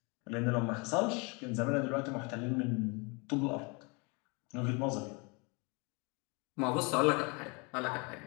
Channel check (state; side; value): quieter; right; 30.6 dB